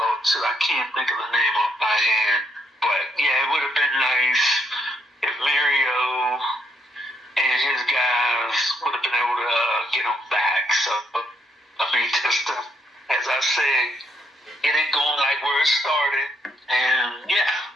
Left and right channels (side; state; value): both; normal; correlation 0.75